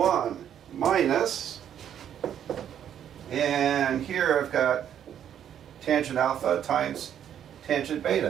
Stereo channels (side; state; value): left; quieter; 9.6 dB